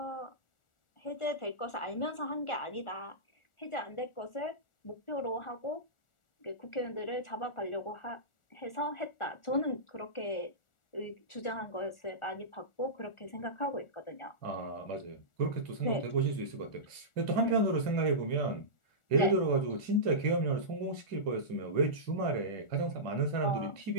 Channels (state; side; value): late; right; 1.4 ms